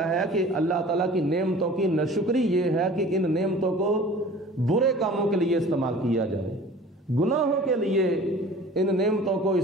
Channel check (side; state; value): both; normal; correlation 0.44